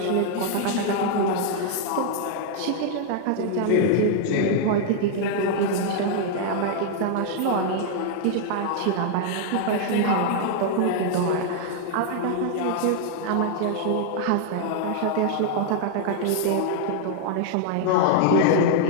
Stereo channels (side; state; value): both; different; correlation 0.00